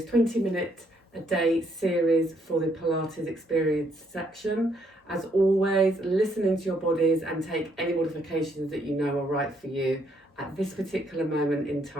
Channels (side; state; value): both; normal; correlation 0.71